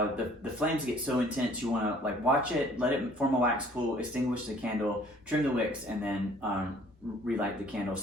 flames get so intense. You want to like watch it, let it form a wax pool, extinguish the candle, trim the wicks, and then relight the candle.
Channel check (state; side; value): normal; both; correlation 0.56